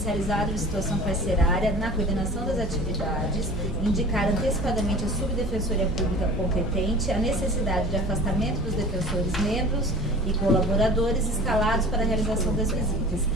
de situação carcerária, na coordenação das atividades, indicar antecipadamente a subdefensoria pública competente a necessidade de afastamento dos defensores membros e colaboradores escalados para a realização das visitas.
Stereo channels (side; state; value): both; normal; correlation 0.41